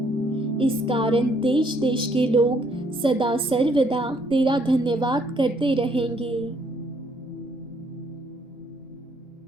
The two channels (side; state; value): both; normal; correlation 0.68